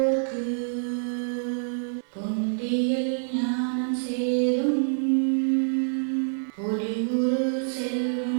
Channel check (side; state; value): left; silent; 61 dB below the other